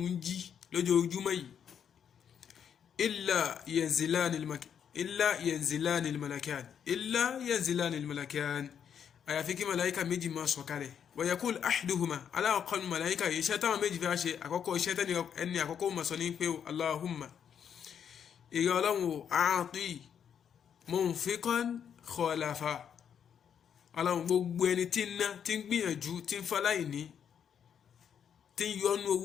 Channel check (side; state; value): right; quieter; 8.1 dB